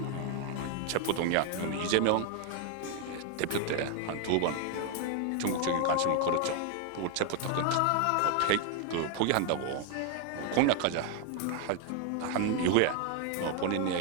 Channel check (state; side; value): different; both; correlation 0.01